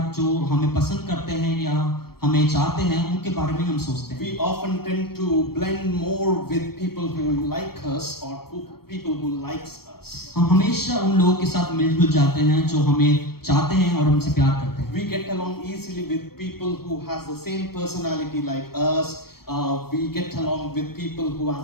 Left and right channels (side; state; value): right; late; 0.94 ms